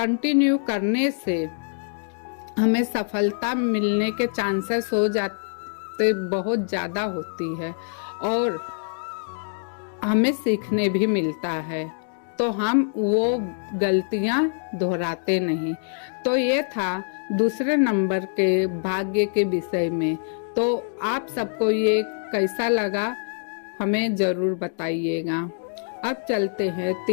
करने से हमें सफलता मिलने के चांसेस हो जाते बहुत ज़्यादा होती है और हमें सीखने भी मिलता है, तो हम वो गलतियां दोहराते नहीं। तो ये था दूसरे नंबर के भाग्य के विषय में। तो आप सबको ये कैसा लगा हमें जरूर बताइएगा। अब चलते हैं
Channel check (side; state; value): right; silent; digital silence